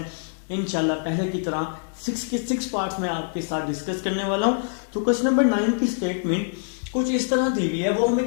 इंशाल्लाह पहले की तरह 6 के 6 पार्ट्स में आपके साथ डिस्कस करने वाला हूँ। तो क्वेश्चन नंबर 9 की स्टेटमेंट कुछ इस तरह दी हुई है। वो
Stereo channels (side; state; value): right; silent; digital silence